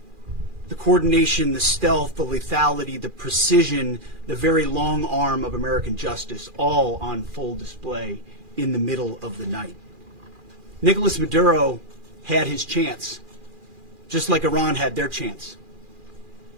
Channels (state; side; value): late; left; 2.4 ms